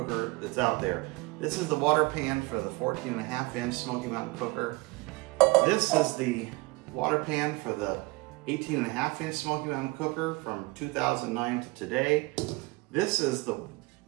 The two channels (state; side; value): quieter; left; 24.3 dB